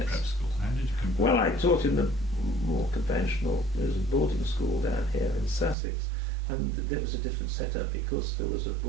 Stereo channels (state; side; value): drops out; left; at 5.8 s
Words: school? How did you compare? Well, I taught in the more conventional, there was a boarding school down here in Sussex, and there was a different setup because there was a